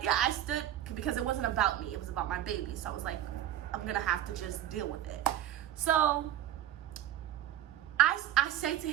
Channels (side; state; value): left; quieter; 12.0 dB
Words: yeah, I stood because it wasn't about me. It was about my baby. So I was like, I'm gonna have to just deal with it. So I say to